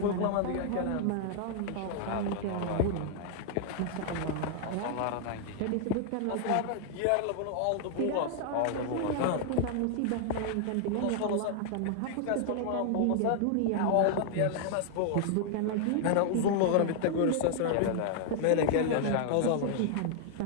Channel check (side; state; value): both; different; correlation 0.00